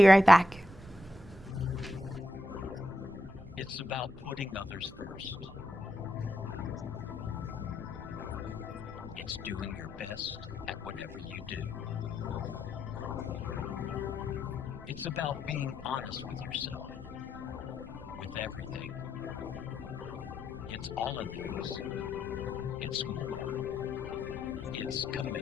right back. It's about putting others first. It's doing your best at whatever you do. It's about being honest with yourself, with everything. It's all of these. It's more. It's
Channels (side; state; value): right; noise; rumble, 15 dB below the sound